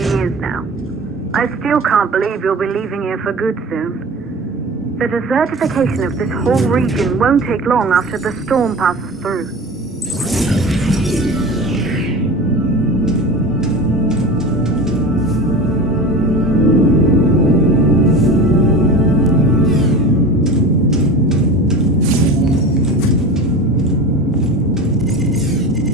years now. I still can't believe you'll be leaving here for good soon. The desertification of this whole region won't take long after the storm passes through.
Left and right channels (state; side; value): normal; both; correlation 0.32